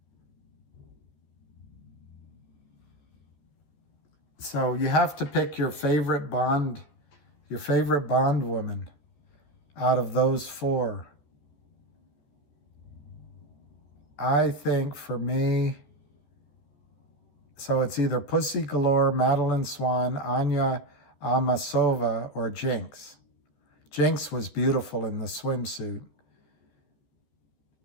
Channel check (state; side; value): late; right; 14 ms